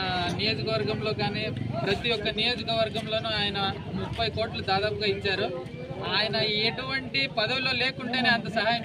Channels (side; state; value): both; identical; correlation 1.00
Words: నియోజకవర్గంలో కానీ ప్రతి ఒక్క నియోజకవర్గంలోనూ ఆయన 30 కోట్లు దాదాపుగా ఇచ్చారు. ఆయన ఎటువంటి పదవిలో లేకుంటేనే అంత సహాయం